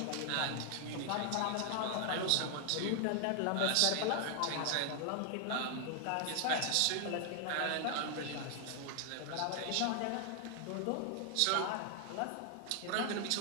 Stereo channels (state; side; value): different; both; correlation 0.00